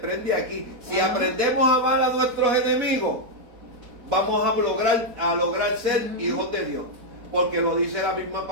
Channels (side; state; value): left; late; 4.2 ms